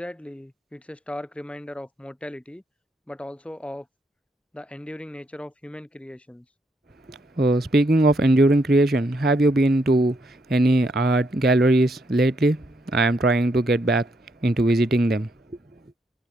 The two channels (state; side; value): normal; both; correlation 0.76